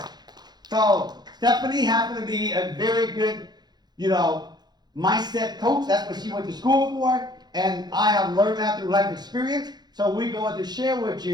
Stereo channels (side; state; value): left; late; 0.20 ms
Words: So, Stephanie happened to be a very good, mindset coach. That's what she went to school for. And I have learned that through life experience. So we're going to share with